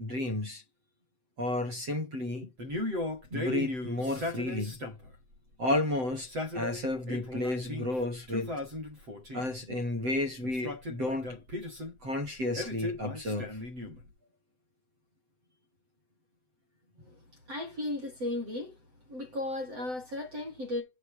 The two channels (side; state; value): left; late; 7.8 ms